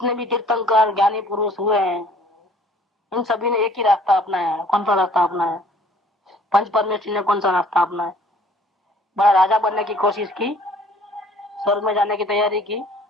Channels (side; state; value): both; normal; correlation 0.55